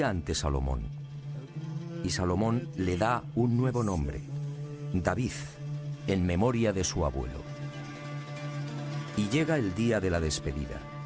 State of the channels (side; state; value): both; identical; correlation 1.00